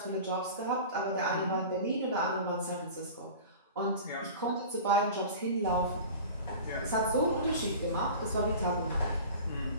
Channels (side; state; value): both; inverted; correlation -0.36